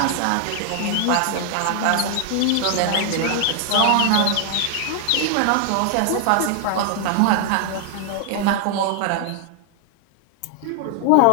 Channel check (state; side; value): different; both; correlation 0.00